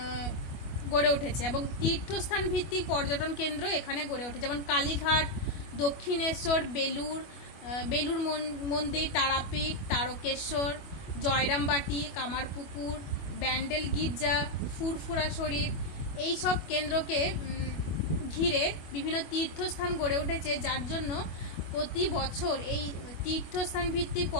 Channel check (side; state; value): right; late; 25 ms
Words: গড়ে উঠেছে এবং তীর্থস্থান ভিত্তিক পর্যটন কেন্দ্র এখানে গড়ে ওঠে, যেমন কালীঘাট, দক্ষিণেশ্বর, বেলুর মন্দির, তারাপীঠ, তারকেশ্বর, জয়রামবাটি, কামারপুকুর, ব্যান্ডেল গির্জা, ফুরফুরা শরীফ, এই সব কেন্দ্রকে ঘিরে বিভিন্ন তীর্থস্থান গড়ে উঠেছে, যার জন্য প্রতি বছর এই তীর্থস্থান ভিত্তিক